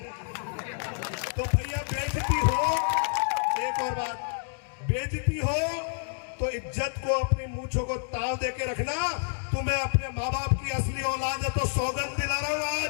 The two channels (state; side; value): silent; right; digital silence